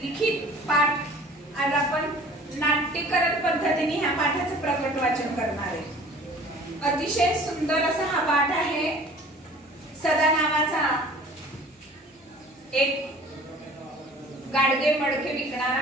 लिखित पाठ. आज आपण नाट्यकरण पद्धतीने ह्या पाठाचं प्रकट वाचन करणार आहे. अतिशय सुंदर असा हा पाठ आहे. सदा नावाचा एक गाडगे मडके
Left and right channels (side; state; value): both; normal; correlation 0.47